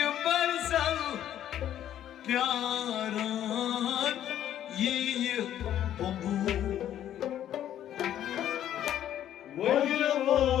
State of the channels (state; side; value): quieter; right; 11.2 dB